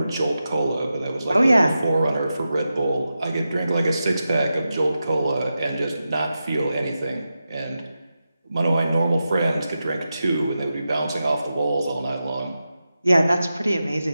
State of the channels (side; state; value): both; inverted; correlation -0.90